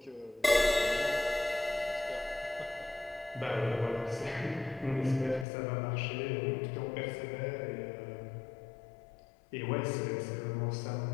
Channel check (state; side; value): drops out; right; at 5.5 s